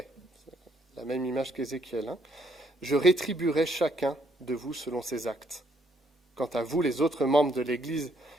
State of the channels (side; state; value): both; normal; correlation 0.69